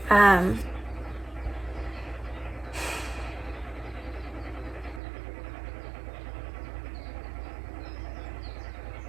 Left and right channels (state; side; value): drops out; left; at 5.0 s